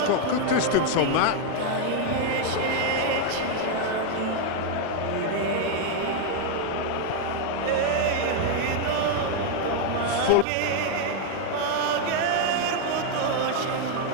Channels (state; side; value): different; both; correlation 0.00